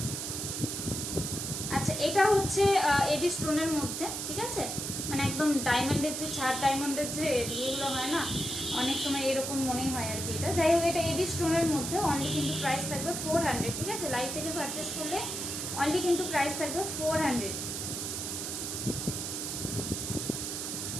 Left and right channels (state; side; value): noise; right; hiss, 4 dB below the sound